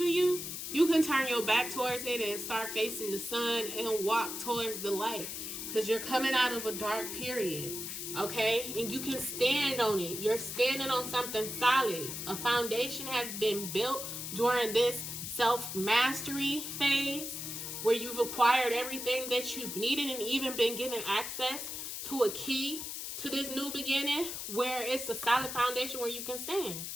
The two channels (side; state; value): left; noise; hiss, 6 dB below the sound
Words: you, you can turn your back towards it and start facing the sun and walk towards the light, because you're coming out of a dark period, okay? And you can stand on it. You're standing on something solid. A foundation has been built during this self-mastery phase, where you've acquired everything that you've needed and even been given access to a key to this new beginning, where it's a solid foundation where you can stand.